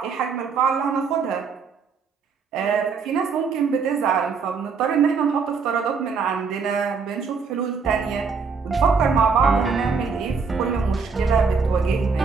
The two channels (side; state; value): left; quieter; 5.3 dB